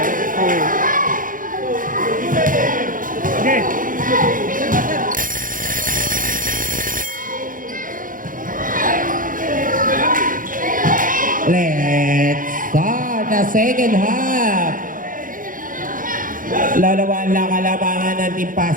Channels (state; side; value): late; left; 0.39 ms